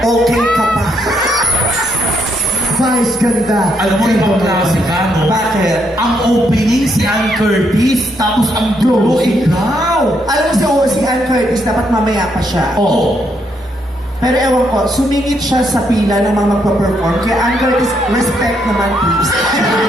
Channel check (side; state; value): both; normal; correlation 0.75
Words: ka pa. Vice ganda. Alam mo, ibang klase ka, no? Bakit? Ang opening si Ann Curtis, tapos ang dulo, ikaw. Alam mo si Ann Curtis, dapat mamaya pa siya. Oo. Pero ewan ko, sumingit siya sa pila ng mga magpa-perform. Kaya Ann Curtis, respect naman please.